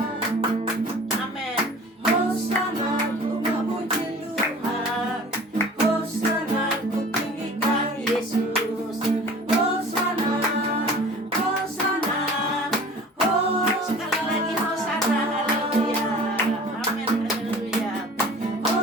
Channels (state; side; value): normal; both; correlation 0.44